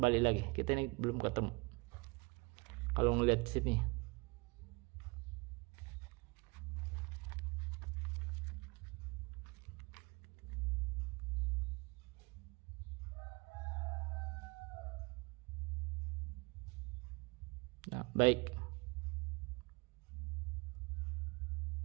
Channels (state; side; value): quieter; left; 26.7 dB